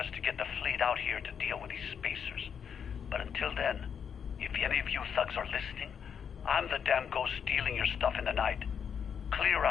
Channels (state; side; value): quieter; right; 7.4 dB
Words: to get the fleet out here to deal with these spacers. But until then, if any of you thugs are listening, I'm the damn ghost stealing your stuff in the night. Clear